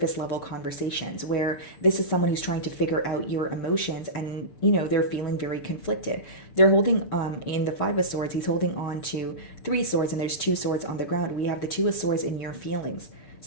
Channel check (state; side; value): late; right; 6.8 ms